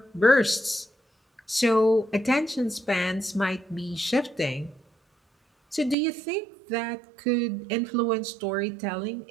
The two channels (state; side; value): drops out; left; at 6.0 s